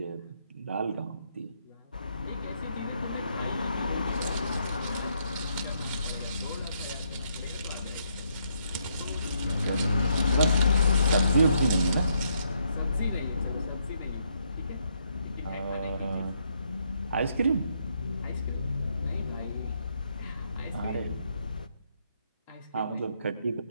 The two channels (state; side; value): inverted; both; correlation -0.74